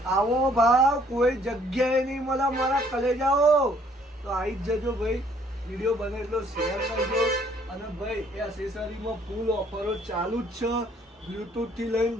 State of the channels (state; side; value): normal; both; correlation 0.63